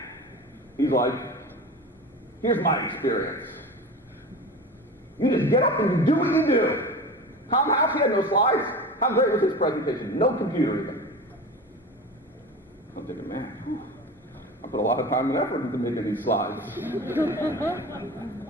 He's like, here's my experience. You just get up and you do what you do. Tom House, he had no slides. How great was his presentation? No computer even. I'm thinking, man, I put a lot of time and effort into making these slides. And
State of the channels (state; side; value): normal; both; correlation 0.32